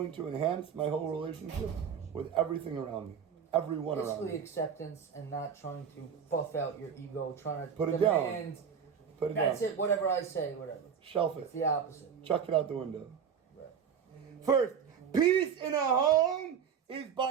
to enhance my whole relationship with everything around me? Everyone around me. Basically acceptance and not trying to buff out your ego, trying to Put it demand. down. Put it That's down. it, whatever I say, whatever. Shelf it. It's the opposite. Chuck it out the window. Right. First, peace in a home is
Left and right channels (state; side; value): quieter; left; 7.3 dB